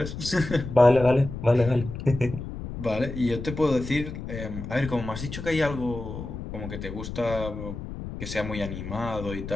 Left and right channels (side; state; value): left; noise; rumble, 8 dB below the sound